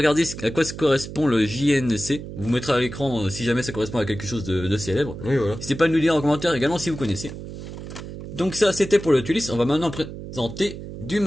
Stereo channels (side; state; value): right; noise; hum, 10 dB below the sound